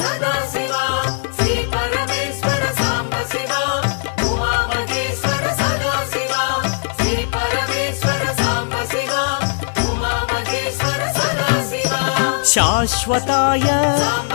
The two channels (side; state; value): right; silent; digital silence